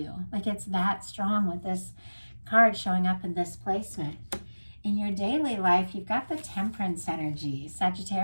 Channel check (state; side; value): inverted; both; correlation -1.00